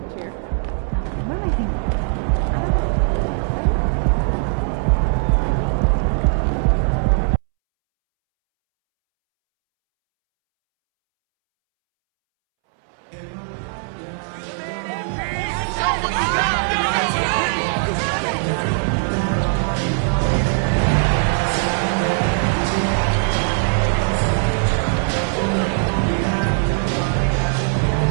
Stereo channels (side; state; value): left; silent; 66 dB below the other